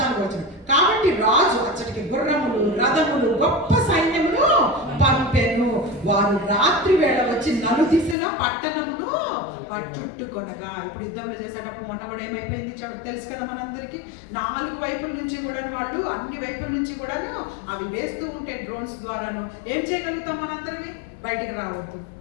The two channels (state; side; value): drops out; right; at 8.2 s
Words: వచనం. కాబట్టి రాజు అచ్చటికి గుర్రములు, రథములు, గొప్ప సైన్యమును పంపెను. వారు రాత్రి వేళ వచ్చి నలుదిశల పట్టణమును చుట్టుకొనగా. ఇప్పుడు యుద్ధంలో చేసేటప్పుడు మొన్న కూడా ఏమైపోయింది తెలుసు కదా మనందరికీ. 4 వైపుల నుంచి కూడా వాళ్ళు, అన్ని వైపుల నుంచి కూడాను అవి వేస్తూ ఉంటే డ్రోన్స్ ద్వారాను ఏం చేయగలుగుతాం మనందరివి, బయటికి రావద్దు,